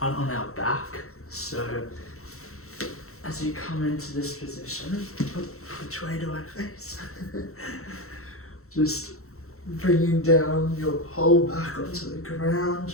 on our back. So as you come into this position, which way do I face? Just bringing down your whole back onto the ground.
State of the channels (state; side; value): late; right; 0.63 ms